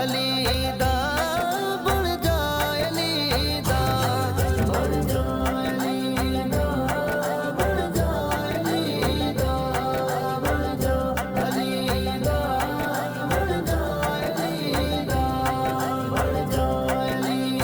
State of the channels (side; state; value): both; identical; correlation 1.00